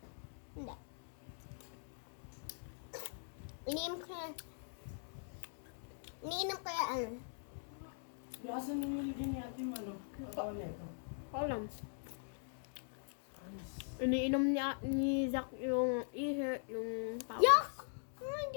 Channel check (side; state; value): right; silent; digital silence